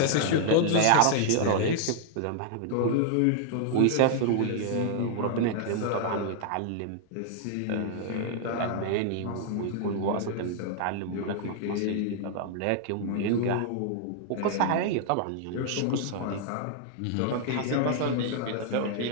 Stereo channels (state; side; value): different; both; correlation 0.00